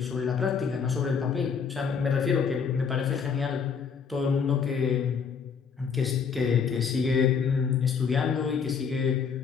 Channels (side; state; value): right; quieter; 6.2 dB